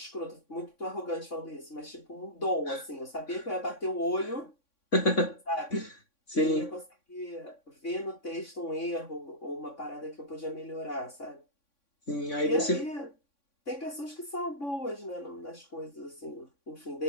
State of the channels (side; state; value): right; late; 3.6 ms